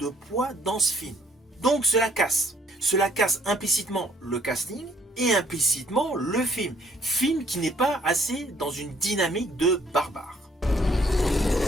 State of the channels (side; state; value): both; normal; correlation 0.63